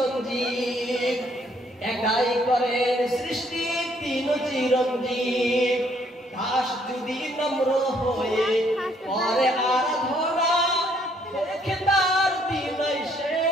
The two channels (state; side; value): normal; both; correlation 0.67